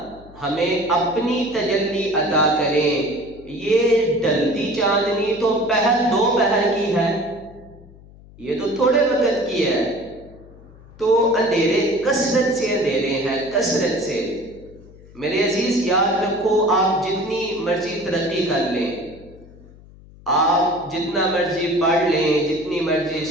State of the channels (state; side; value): noise; left; hum, 22 dB below the sound